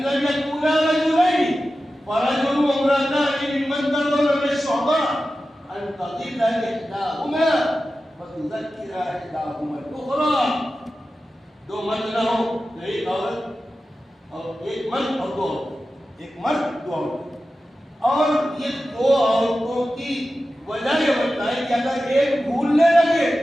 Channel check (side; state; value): both; normal; correlation 0.93